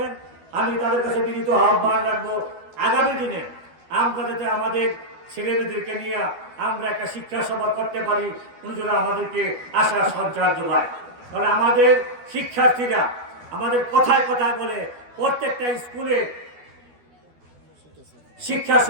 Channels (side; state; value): left; late; 12 ms